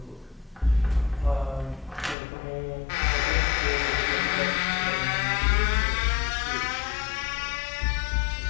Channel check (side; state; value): right; drops out; at 2.1 s